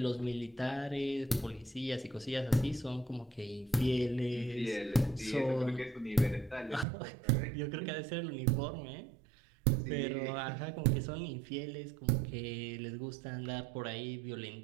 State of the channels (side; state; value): left; drops out; at 6.9 s